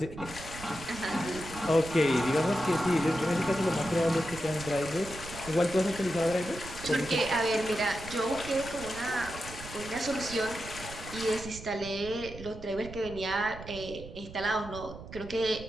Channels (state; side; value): noise; right; rumble, 13 dB below the sound